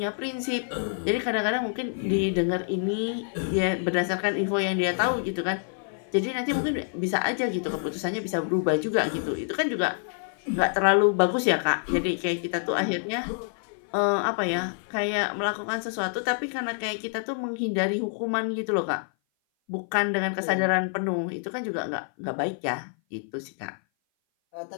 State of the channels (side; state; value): right; silent; 56 dB below the other